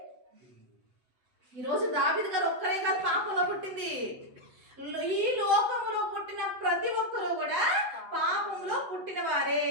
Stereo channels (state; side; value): late; left; 8.0 ms